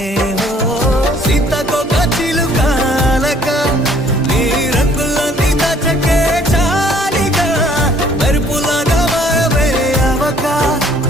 సీతకొక చిలుకాలక నీ రంగులన్నీ దచకే చాలిగా మెరుపులాగా మాయమే అవక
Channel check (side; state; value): both; normal; correlation 0.60